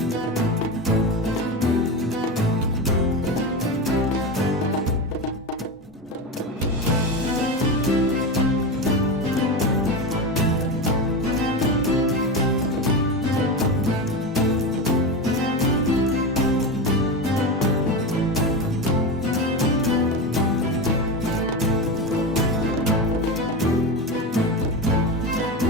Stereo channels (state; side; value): normal; both; correlation 0.19